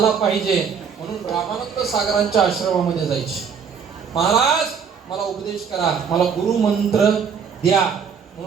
पाहिजे म्हणून रामानंद सागरांच्या आश्रमामध्ये जायचे. महाराज मला उपदेश करा, मला गुरु मंत्र द्या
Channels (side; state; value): left; quieter; 6.6 dB